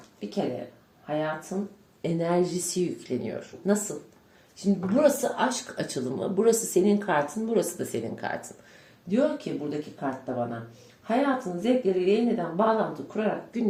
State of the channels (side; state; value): both; identical; correlation 1.00